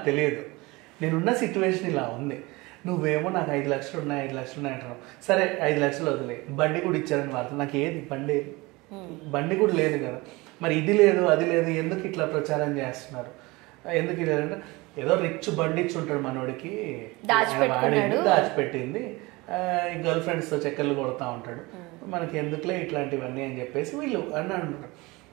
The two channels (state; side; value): quieter; left; 23.1 dB